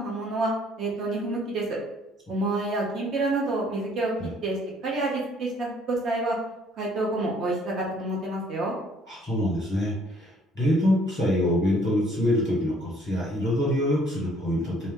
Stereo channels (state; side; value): normal; both; correlation 0.61